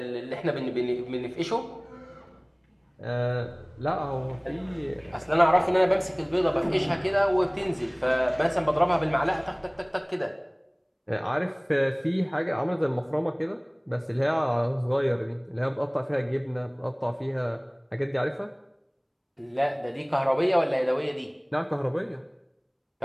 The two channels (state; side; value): identical; both; correlation 1.00